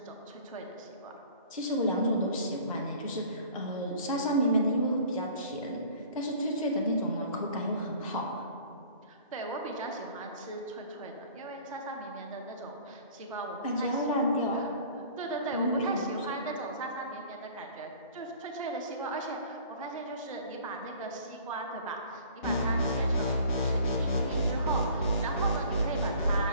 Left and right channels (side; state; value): both; inverted; correlation -0.48